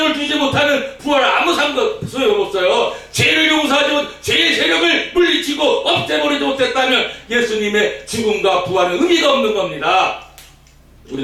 주지 못하는 부활 아무 소용없어요. 죄를 용서하지 못, 죄의 세력을 물리치고 없애버리지 못했다면 예수님의 죽음과 부활은 의미가 없는 겁니다.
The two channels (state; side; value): identical; both; correlation 1.00